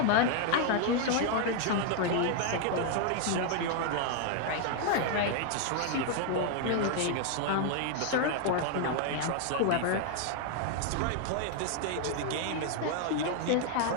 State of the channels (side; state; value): both; different; correlation 0.00